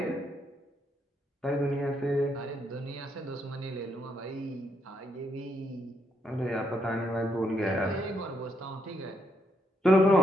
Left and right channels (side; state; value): both; normal; correlation 0.77